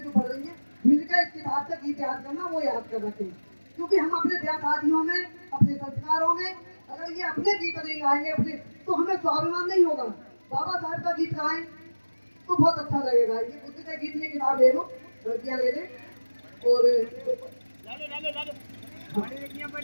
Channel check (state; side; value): inverted; both; correlation -1.00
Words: जो पढ़ रही हैं, मिलकर इस किताब से गीत याद करना, वो याद कर रखें। क्योंकि हम अपने ब्याह शादियों में, अपने संस्कारों में अगर ये अपने गीत नहीं गाएंगे अपने, तो हमें स्वाभिमान नहीं होगा। बाबा साहब का गीत गाएं तो बहुत अच्छा लगेगा। ये बुद्ध का गीत की किताब ले लो, लड़कियां ले लें, और